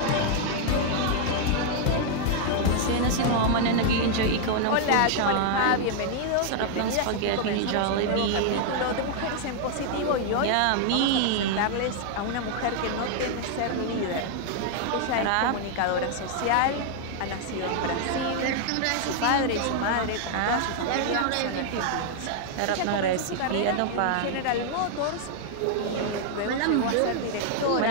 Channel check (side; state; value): both; different; correlation 0.00